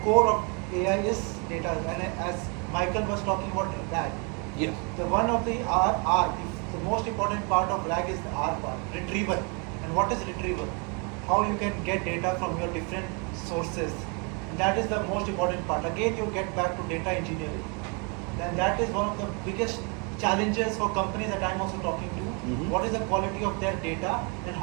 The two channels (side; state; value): left; quieter; 33.9 dB